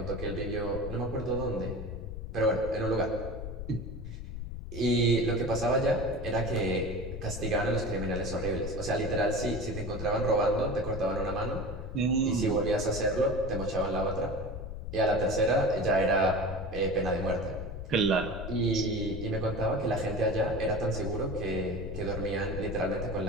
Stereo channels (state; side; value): noise; left; rumble, 7 dB below the sound